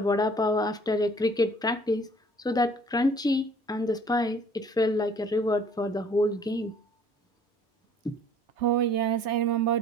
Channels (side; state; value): both; normal; correlation 0.54